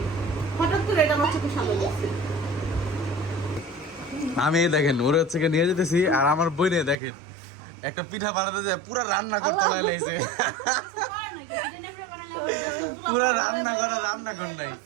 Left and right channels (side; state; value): left; drops out; at 7.0 s